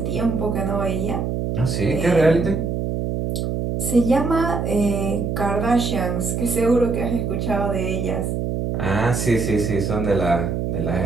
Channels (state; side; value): noise; right; hum, 1 dB below the sound